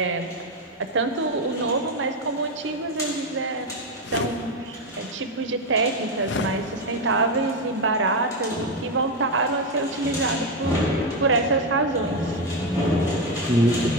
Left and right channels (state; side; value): normal; both; correlation 0.09